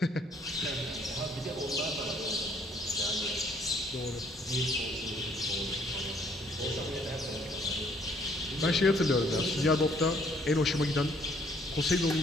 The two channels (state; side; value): normal; both; correlation 0.63